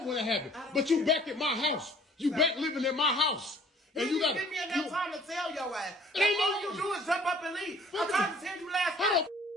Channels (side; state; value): both; normal; correlation 0.54